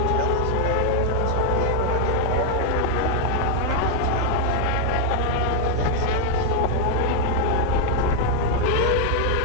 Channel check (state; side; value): different; both; correlation 0.00